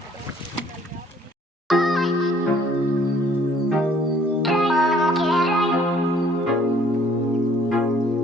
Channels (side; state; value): both; normal; correlation 0.59